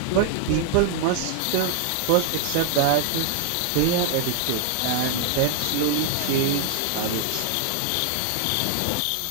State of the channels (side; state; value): both; different; correlation 0.00